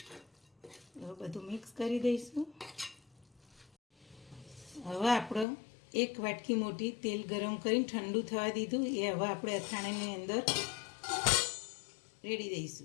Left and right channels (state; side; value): drops out; right; at 5.5 s